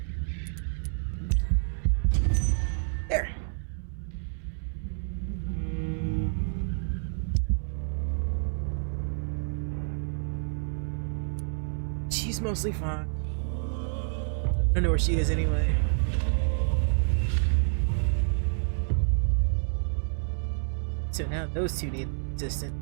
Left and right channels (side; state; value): left; silent; 59 dB below the other